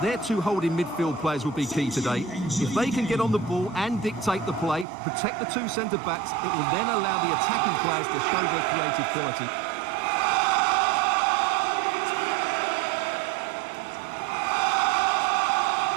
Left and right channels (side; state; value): left; drops out; at 4.9 s